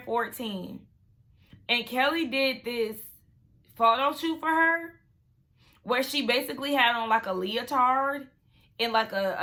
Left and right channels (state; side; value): identical; both; correlation 1.00